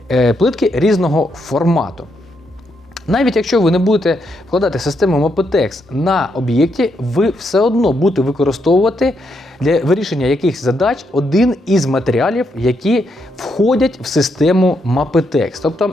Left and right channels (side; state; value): both; normal; correlation 0.79